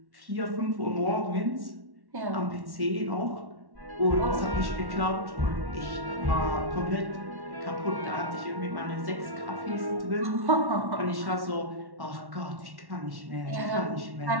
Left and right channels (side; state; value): left; late; 1.1 ms